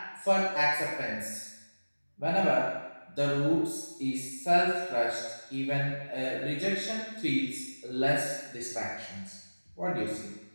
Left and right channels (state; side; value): inverted; both; correlation -1.00